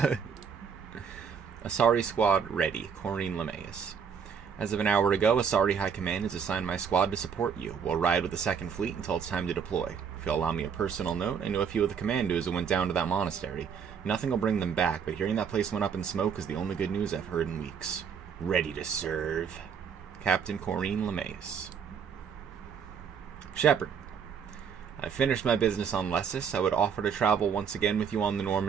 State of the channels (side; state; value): left; quieter; 6.9 dB